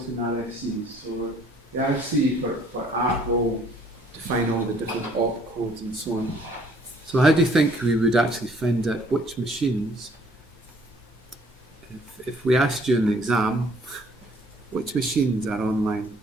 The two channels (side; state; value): both; normal; correlation 0.60